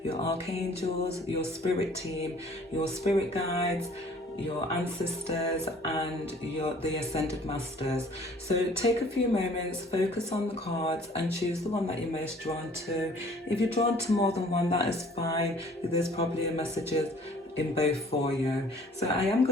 your archangels, your spirit team, your spirit guides, your ancestors, and the ascended masters. So take a few moments, focus on the cards and choose the one that you're most drawn to. If you're drawn to more than one, that is fine. There's probably a messages in both for you. So I am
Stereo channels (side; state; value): both; normal; correlation 0.53